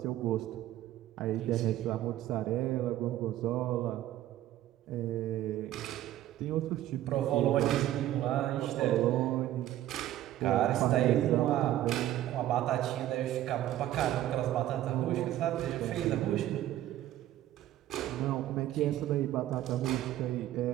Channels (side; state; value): left; quieter; 13.4 dB